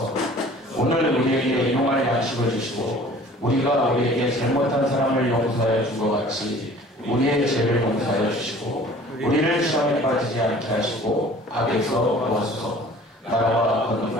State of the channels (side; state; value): both; normal; correlation 0.48